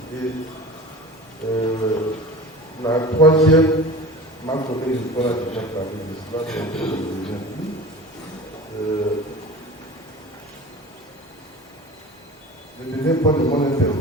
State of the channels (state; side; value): normal; both; correlation 0.37